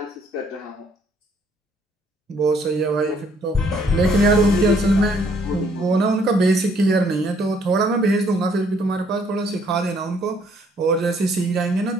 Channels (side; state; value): both; normal; correlation 0.65